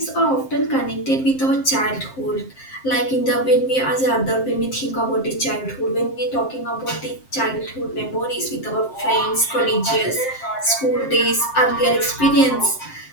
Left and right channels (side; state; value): right; late; 7.6 ms